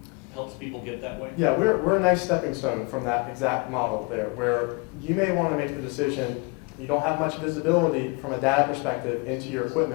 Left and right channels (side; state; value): right; quieter; 30.4 dB